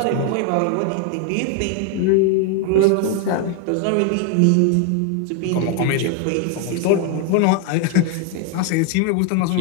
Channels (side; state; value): both; different; correlation 0.01